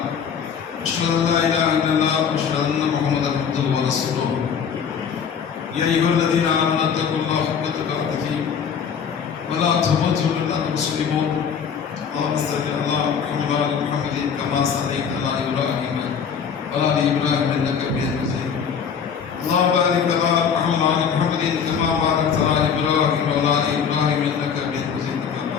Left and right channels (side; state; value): right; quieter; 7.1 dB